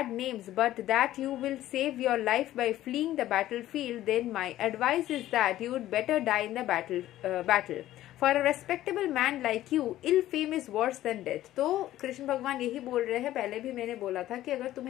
names but that you will save your life by fleeing the battlefield, then my advice is that you would better die in the battle. For a respectable man like you, ill fame is worse than death. तो कृष्ण भगवान यही बोल रहे हैं, पहले भी मैंने बोला था कि अगर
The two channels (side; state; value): right; quieter; 14.1 dB